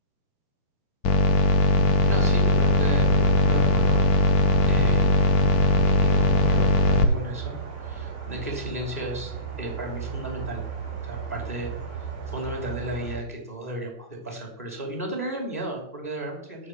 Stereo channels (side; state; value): both; inverted; correlation -0.35